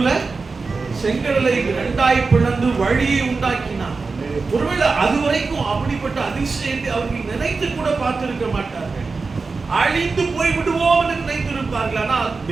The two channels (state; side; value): quieter; left; 4.3 dB